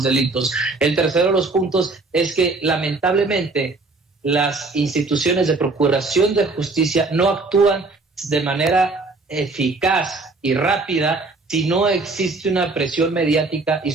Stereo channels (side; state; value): left; quieter; 3.6 dB